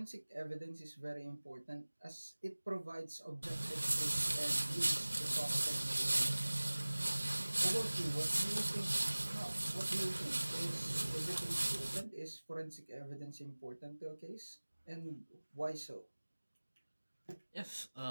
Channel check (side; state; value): both; inverted; correlation -1.00